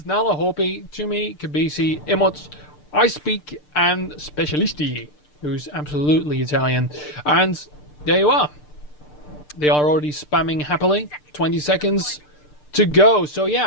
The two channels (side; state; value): right; late; 6.7 ms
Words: Nala, Hopi, Tumi, Kabisi, Emots, I Speak, and Specialisti, who's absolutely Italian. And there you are. They are already spamming happily. 20 seconds to go. So